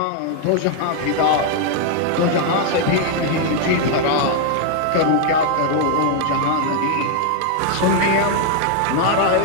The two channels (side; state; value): both; different; correlation 0.00